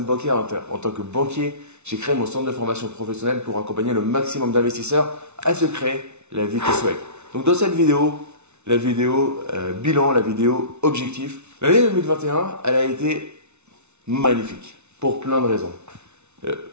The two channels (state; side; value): late; left; 0.81 ms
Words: bancaire en tant que banquier, j'ai créé mon centre de formation professionnelle pour accompagner le maximum d'investisseurs à se créer la vie qu'ils souhaitent. Donc dans cette vidéo, la vidéo bilan, la vidéo objectif, l'année 2021, elle a été magnifique pour plein de raisons.